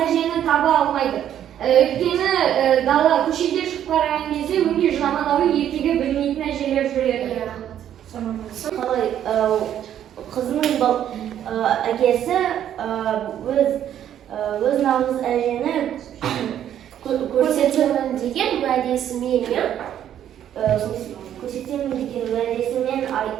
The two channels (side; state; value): left; quieter; 10.5 dB